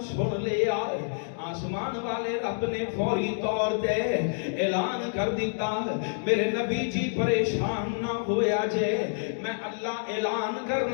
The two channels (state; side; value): silent; right; digital silence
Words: سن لیا آسمان والے رب نے فوری طور تے اعلان کر دیتا میرے نبی جی پریشان نہ ہویا جے میں اللہ اعلان